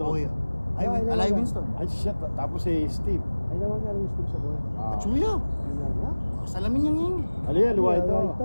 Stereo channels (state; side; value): inverted; both; correlation -1.00